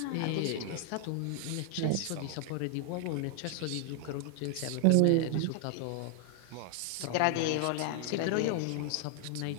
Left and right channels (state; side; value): different; both; correlation 0.00